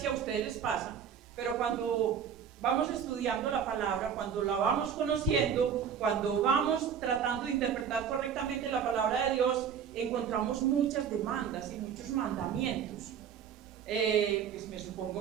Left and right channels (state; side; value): quieter; left; 7.8 dB